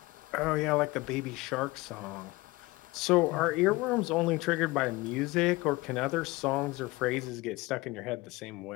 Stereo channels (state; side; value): quieter; right; 21.6 dB